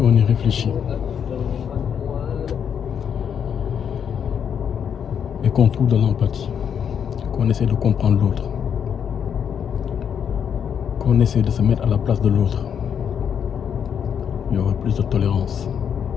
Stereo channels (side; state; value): right; quieter; 7.9 dB